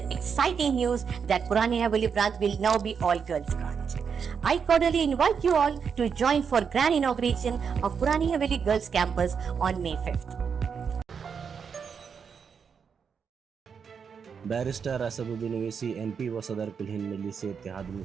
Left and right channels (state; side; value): quieter; left; 6.5 dB